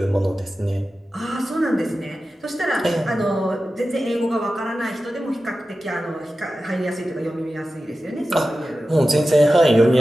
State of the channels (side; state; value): both; normal; correlation 0.93